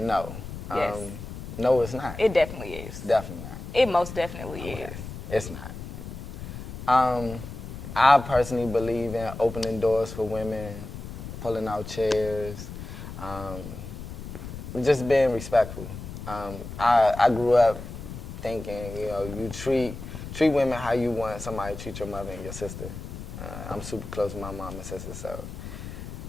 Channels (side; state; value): left; noise; rumble, 10 dB below the sound